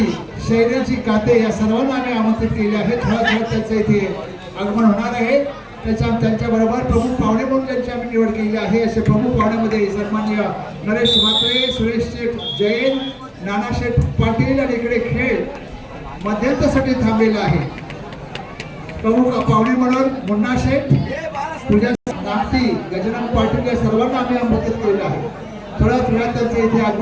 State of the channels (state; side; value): identical; both; correlation 1.00